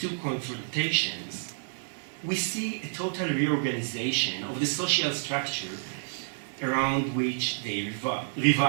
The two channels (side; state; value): left; silent; digital silence